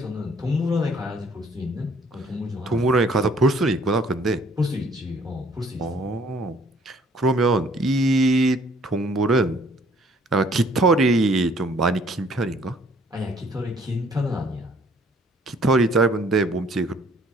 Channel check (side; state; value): both; normal; correlation 0.59